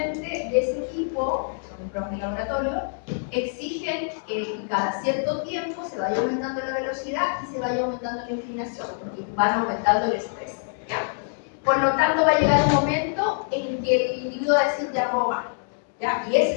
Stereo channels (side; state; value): right; silent; digital silence